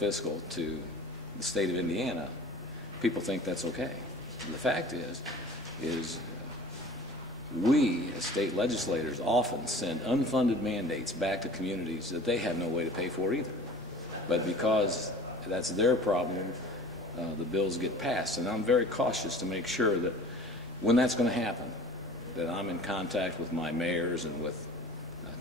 to the state of Indiana, people think that's okay. The fact is we as state legislators often send unfunded mandates back to communities that they have no way to pay for either. But because that's their problem, the bills get passed. And I'm very cautious to make sure that when that's going to happen, that I'm in contact with my mayors and with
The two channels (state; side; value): normal; both; correlation 0.44